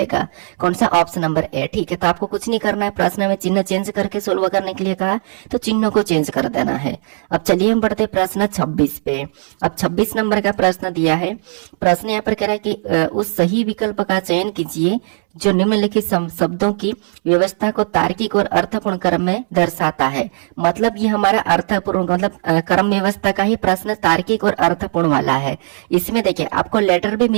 कौन सा, ऑप्शन नंबर ए, ठीक है। तो आपको कुछ नहीं करना है, प्रश्न में चिन्ह चेंज करके सोल्व करने के लिए कहा तो चिन्ह को चेंज कर देना है। अब चलिए हम बढ़ते प्रश्न 26 पे। अब 26 नंबर का प्रश्न दिया है। प्रश्न यहाँ पर कह रहा है कि उस सही विकल्प का चयन कीजिए जो निम्नलिखित शब्दों की व्यवस्था को तार्किक और अर्थपूर्ण क्रम में दर्शाता है। मतलब ये हमारा अर्थपूर्ण मतलब क्रम व्यवस्था का ही प्रश्न तार्किक और अर्थपूर्ण वाला है। इसमें देखिए आपको लेटर भी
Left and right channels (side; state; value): left; silent; 68 dB below the other